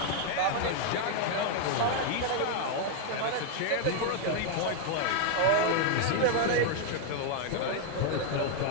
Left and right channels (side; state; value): both; different; correlation 0.00